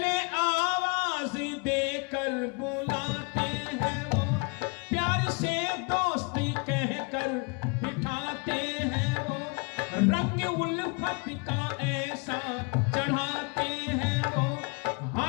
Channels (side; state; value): right; quieter; 31.8 dB